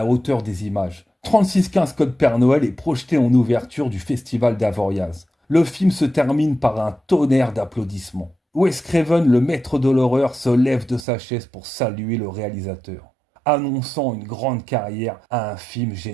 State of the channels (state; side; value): drops out; left; at 11.1 s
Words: hauteur des images. 3615 Code Père Noël est projeté en ouverture du festival d'Avoriaz. Le film se termine par un tonnerre d'applaudissements. Wes Craven, le maître de l'horreur, se lève de sa chaise pour saluer le réalisateur. annonçant une grande carrière à un film